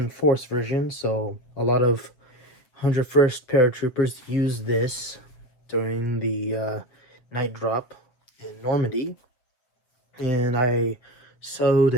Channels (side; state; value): right; late; 7.8 ms